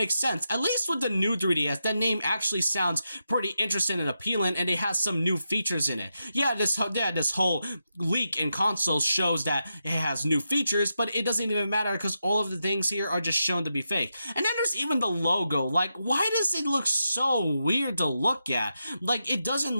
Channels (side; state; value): both; inverted; correlation -0.87